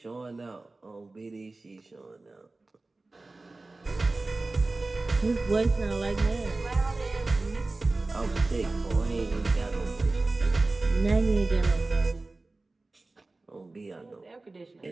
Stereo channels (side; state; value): left; quieter; 3.2 dB